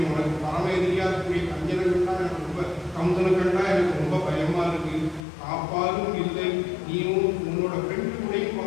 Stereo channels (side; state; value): right; drops out; at 5.2 s